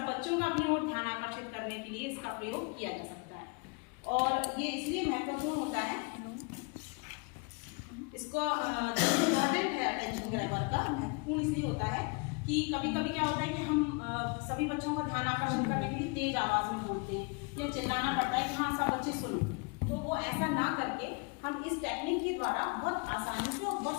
बच्चों का अपनी ओर ध्यान आकर्षित करने के लिए इसका प्रयोग किया जा सकता है। और ये इसलिए महत्वपूर्ण होता है, इसको इम्पोर्टेंट है अटेंशन ग्रैबर का, महत्वपूर्ण इसलिए होता है कि कभी कभी क्या होता है कि हम सभी बच्चों का ध्यान आकर्षित करने के लिए तेज आवाज में बोलते हैं या चिल्लाना पड़ता है कि हाँ सब बच्चे सुनो, तो वो ऐसा ना करके हम इस टेक्निक के द्वारा बहुत आसानी से और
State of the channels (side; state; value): right; quieter; 32.0 dB